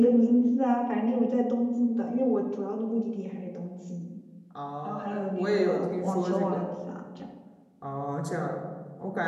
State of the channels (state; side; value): identical; both; correlation 1.00